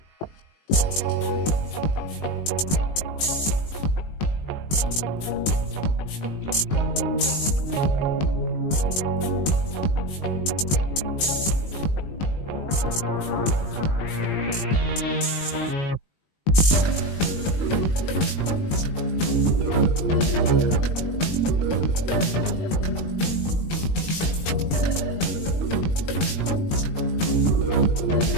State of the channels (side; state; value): right; late; 20 ms